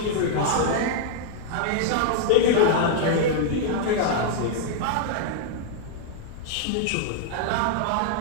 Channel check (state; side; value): different; both; correlation -0.01